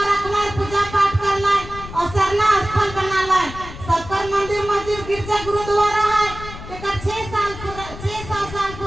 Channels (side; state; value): left; noise; rumble, 12 dB below the sound